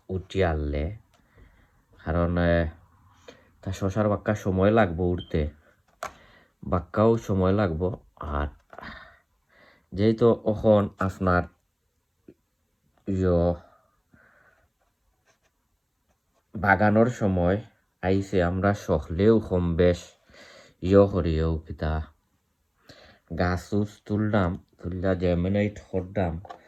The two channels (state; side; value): identical; both; correlation 1.00